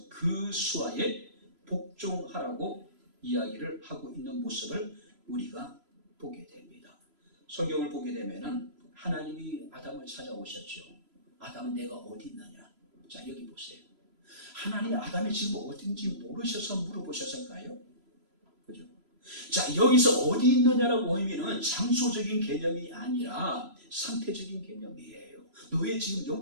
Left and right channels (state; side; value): late; left; 3.0 ms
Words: 그 수하에 복종하라고 이야기를 하고 있는 모습을 우리가 보게 됩니다. 성경을 보게 되면은 하나님이 아담을 찾아오셨죠. 아담은 내가 어디 있느냐? 자, 여기 보세요. 하나님이 아담이 지금 어딘지 모르셔서 물어보셨을까요? 그죠? 자, 여기서 어디 있느냐라고 의미는 장소적인 개념이 아니라 상태적인 개념이에요. 너의 지금